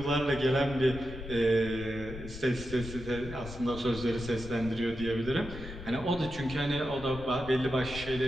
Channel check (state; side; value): noise; left; rumble, 11 dB below the sound